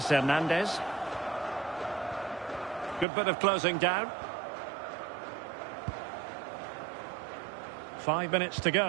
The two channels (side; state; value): left; drops out; at 3.1 s